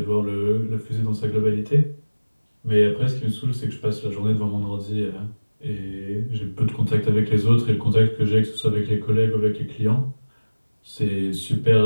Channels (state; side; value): inverted; both; correlation -1.00